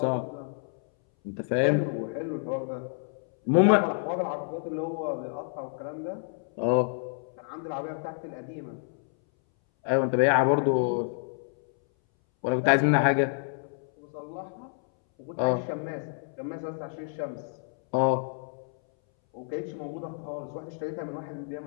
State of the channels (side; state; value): right; silent; 59 dB below the other